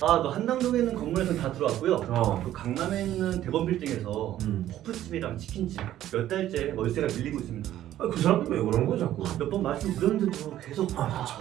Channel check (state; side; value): quieter; left; 12.7 dB